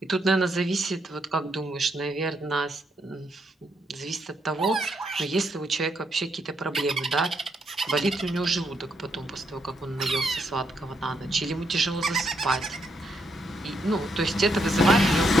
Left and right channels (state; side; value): normal; both; correlation 0.77